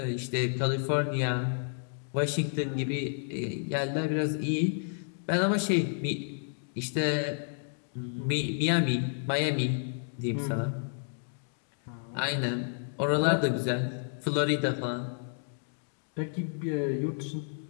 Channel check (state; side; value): silent; right; digital silence